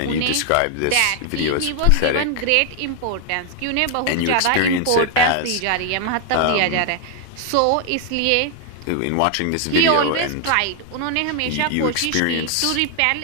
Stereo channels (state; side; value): different; both; correlation 0.00